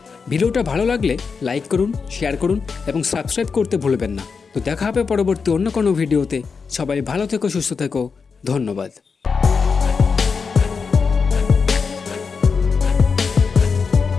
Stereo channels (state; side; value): quieter; right; 5.3 dB